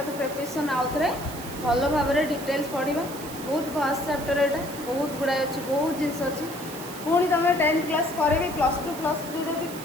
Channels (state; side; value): noise; right; hiss, 13 dB below the sound